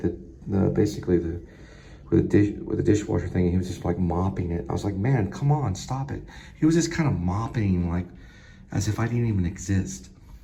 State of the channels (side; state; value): both; identical; correlation 1.00